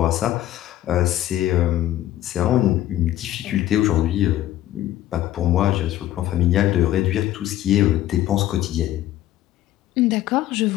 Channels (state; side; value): quieter; right; 13.6 dB